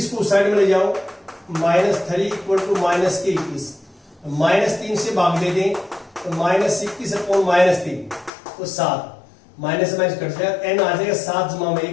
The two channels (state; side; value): drops out; right; at 8.3 s